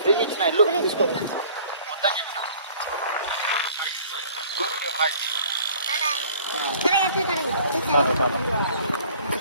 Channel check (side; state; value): both; inverted; correlation -0.52